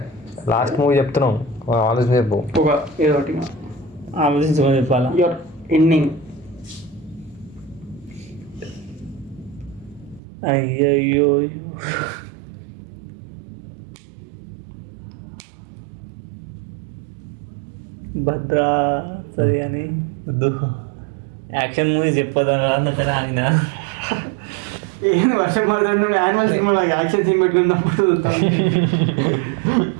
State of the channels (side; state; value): left; drops out; at 10.2 s